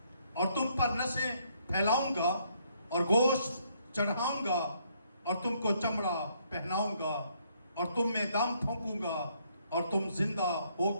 اور تم پر نسیں پھیلاؤں گا اور گوشت چڑھاؤں گا اور تم کو چمڑا پہناؤں گا اور تم میں دم پھونکوں گا اور تم زندہ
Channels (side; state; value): both; inverted; correlation -0.69